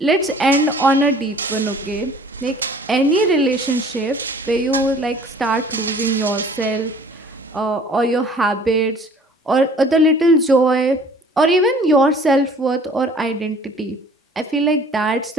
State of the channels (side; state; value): both; normal; correlation 0.51